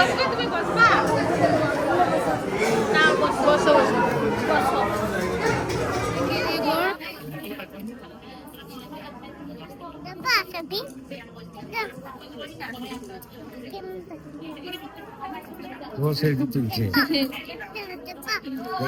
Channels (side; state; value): both; identical; correlation 1.00